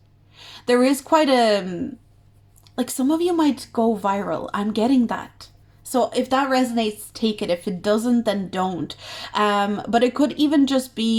There is quite like, some of you might go viral. I'm getting that. So if that resonates, take it. If it doesn't, then don't. But it could even just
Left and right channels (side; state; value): both; identical; correlation 1.00